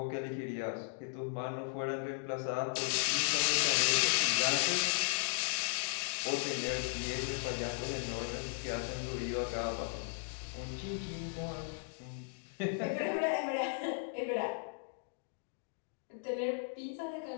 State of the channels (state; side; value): silent; right; digital silence